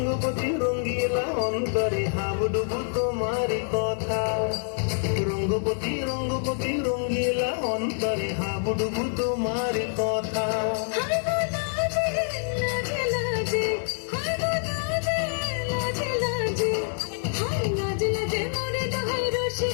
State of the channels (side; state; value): right; silent; 61 dB below the other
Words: রঙ্গিলা অন্তরে হাবুডুবু তোমারি কথা রঙ্গবতী রঙ্গবতী রঙ্গিলা অন্তরে হাবুডুবু তোমারি কথা